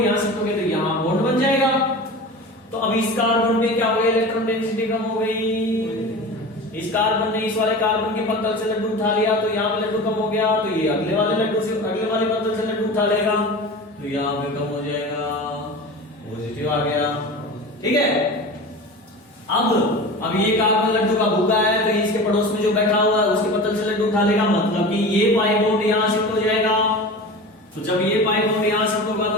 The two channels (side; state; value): both; normal; correlation 0.33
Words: यहां शिफ्ट हो गया तो यहां बॉन्ड बन जाएगा। तो अब इस कार्बन पे क्या हो गया, इलेक्ट्रॉन डेंसिटी कम हो गई, इस कार्बन ने इस वाले कार्बन के पत्तल से लड्डू उठा लिया तो यहाँ पे लड्डू कम हो गया, तो ये अगले वाले लड्डू से अगले वाले पत्तल से लड्डू उठा लेगा तो यहाँ पे कम हो जाएगा, पॉजिटिव आ गया। ठीक है, अब ये कार्बन लड्डू का भूखा है तो इसके पड़ोस में जो बैठा हुआ है उसके पत्तल से लड्डू उठा लेगा, मतलब कि ये पाई बॉन्ड यहाँ शिफ्ट हो जाएगा। तो जब ये पाई बॉन्ड यहाँ शिफ्ट होगा